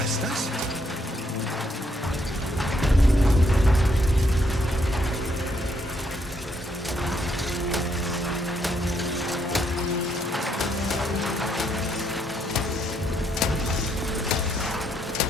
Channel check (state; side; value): normal; both; correlation 0.73